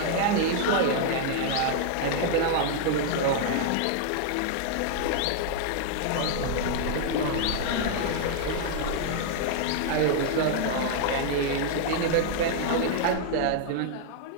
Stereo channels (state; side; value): different; both; correlation 0.00